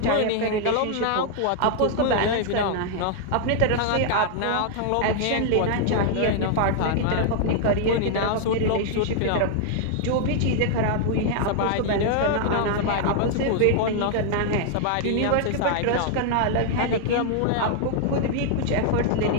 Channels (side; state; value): both; different; correlation 0.00